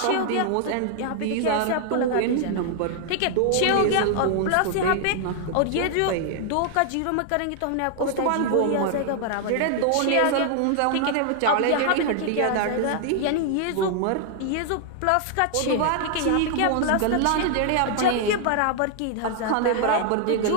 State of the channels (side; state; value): both; different; correlation 0.00